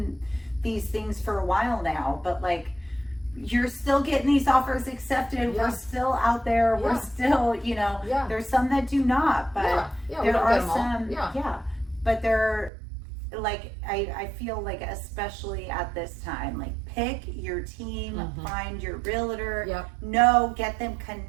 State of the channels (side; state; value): left; drops out; at 12.7 s